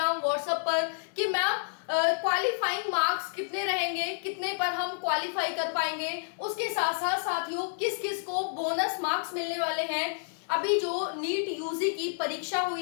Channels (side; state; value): right; silent; 58 dB below the other